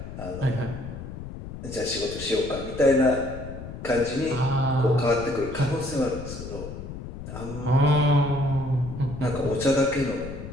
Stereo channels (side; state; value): left; noise; rumble, 10 dB below the sound